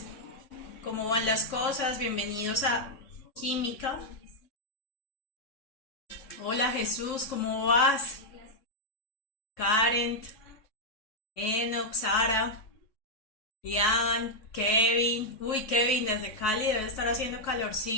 ¿Cómo van las cosas? Bienvenidos a Química. Hola Jesús, ¿cómo vas? Karen, Enoch, Sara, Ian, Kevin. Uy, Kevin, desde Cali debe estar haciendo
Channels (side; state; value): right; late; 3.6 ms